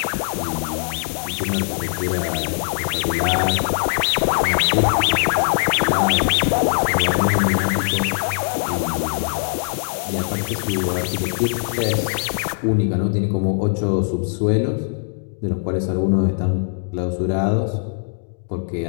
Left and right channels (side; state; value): right; silent; digital silence